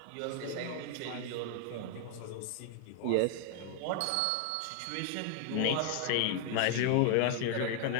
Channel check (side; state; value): both; different; correlation 0.00